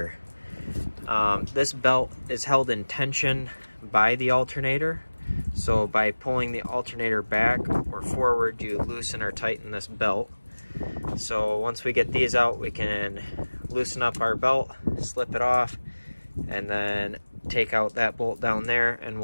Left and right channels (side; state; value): both; inverted; correlation -1.00